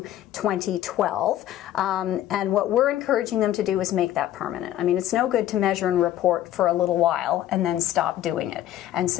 2012. And what we're encouraging them to do is make that permanent. I mean, it's no good to measure and report for a little while and then stop doing it. And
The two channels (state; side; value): quieter; right; 12.7 dB